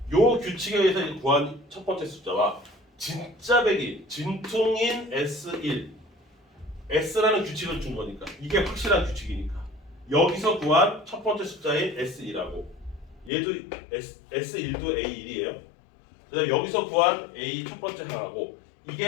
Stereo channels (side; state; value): right; drops out; at 13.3 s